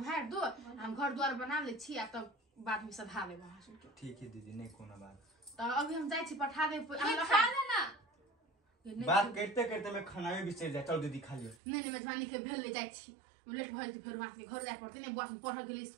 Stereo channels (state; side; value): drops out; left; at 11.6 s